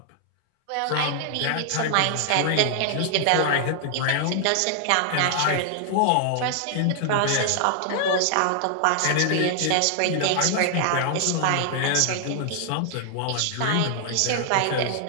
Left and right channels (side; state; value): both; different; correlation 0.00